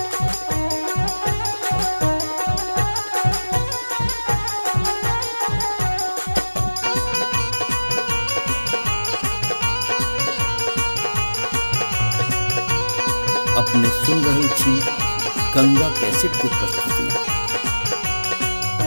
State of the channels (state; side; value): inverted; both; correlation -1.00